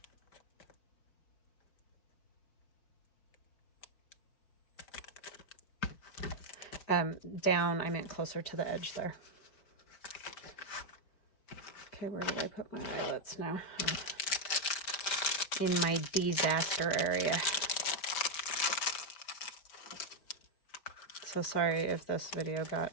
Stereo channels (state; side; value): late; right; 5.1 ms